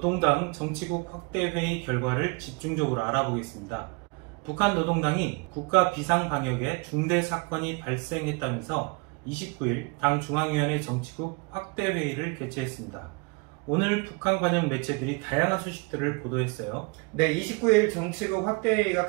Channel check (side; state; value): left; quieter; 30.1 dB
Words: 정치국 확대회의 결과를 집중적으로 알아보겠습니다. 북한 노동당이 국가 비상방역에 중대 사건이 발생했다면서 29일 당 중앙위원회 정치국 확대회의를 개최했습니다. 오늘 북한 관영 매체들이 다양한 소식들을 보도했어요. 네, 29일 정치국 확대회의가